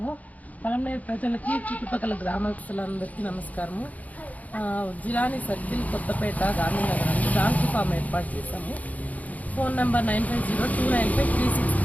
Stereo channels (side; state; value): right; late; 0.074 ms